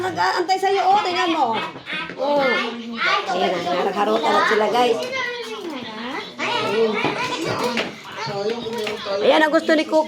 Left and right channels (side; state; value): both; identical; correlation 1.00